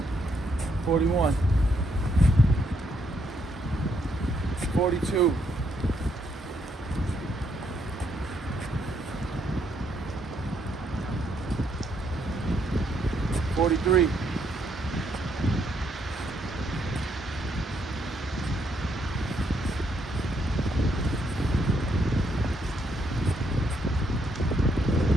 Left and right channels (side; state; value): both; normal; correlation 0.74